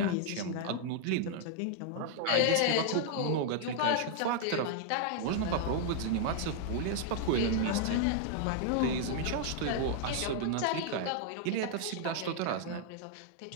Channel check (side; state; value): both; different; correlation 0.00